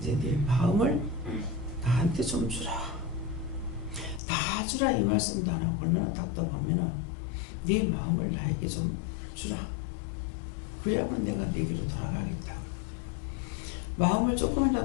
네 마음을 나한테 좀 주라. 다 주라 이 말씀도 안 하고 얼마나 답답하면은 네 마음을 나에게 좀 주라. 그래야만 내가 내게로 돌아가겠다. 마음을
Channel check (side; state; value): right; drops out; at 4.2 s